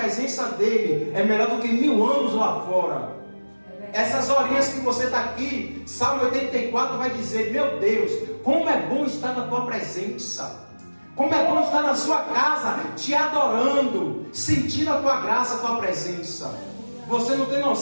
dEle é melhor do que 1000 anos lá fora. Essas horinhas que você está aqui, Salmo 84 vai dizer: meu Deus, como é bom estar na tua presença, como é bom estar na sua casa, te adorando, sentindo a tua graça, a tua presença. Você não tem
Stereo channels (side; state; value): both; inverted; correlation -1.00